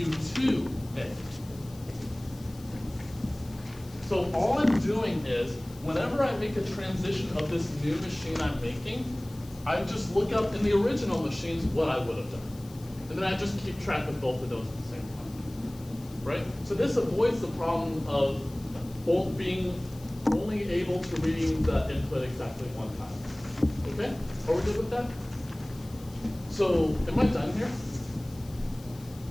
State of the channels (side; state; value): left; noise; hiss, 22 dB below the sound